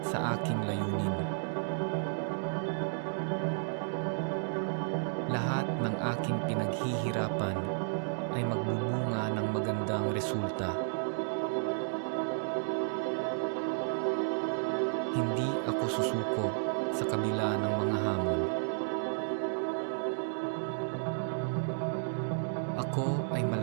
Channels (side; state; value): left; silent; digital silence